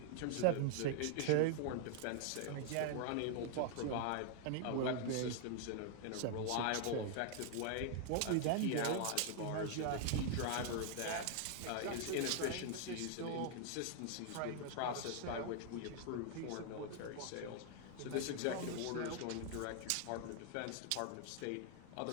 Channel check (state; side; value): different; both; correlation 0.00